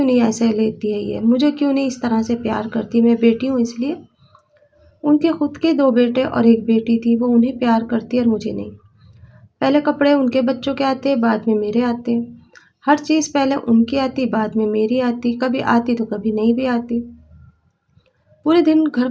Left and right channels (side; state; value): both; identical; correlation 1.00